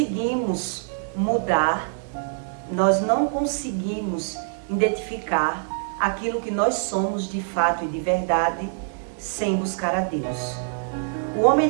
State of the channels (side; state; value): left; silent; digital silence